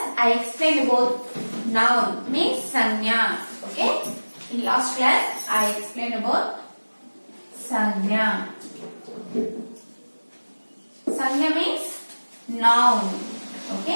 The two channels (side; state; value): both; inverted; correlation -1.00